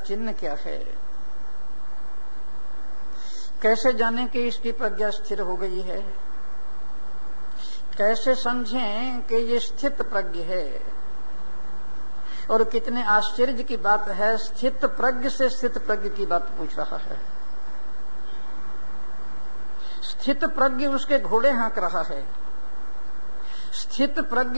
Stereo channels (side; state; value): both; inverted; correlation -1.00